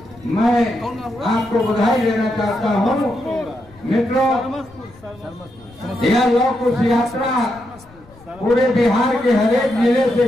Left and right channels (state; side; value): noise; left; rumble, 25 dB below the sound